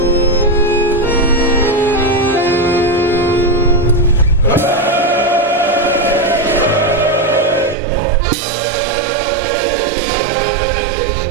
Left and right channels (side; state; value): left; drops out; at 7.8 s